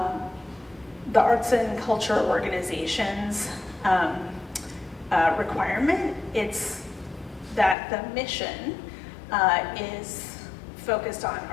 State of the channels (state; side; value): drops out; right; at 7.8 s